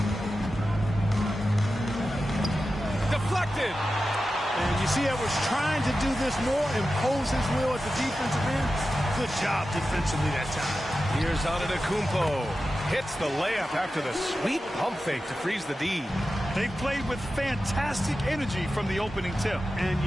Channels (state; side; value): normal; both; correlation 0.92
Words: Deflected. And you see Edwards trying to do this more, impose his will at the defensive end. Good job defensively that time. Here's Antetokounmpo. Hits the layup after the sweet pump fake to freeze the D. They played with fantastic energy from the opening tip. And,